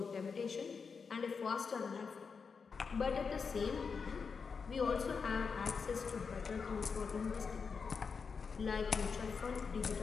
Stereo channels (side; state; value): right; quieter; 5.5 dB